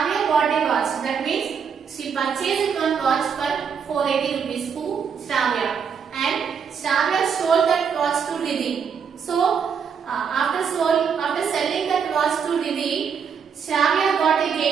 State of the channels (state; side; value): quieter; left; 6.8 dB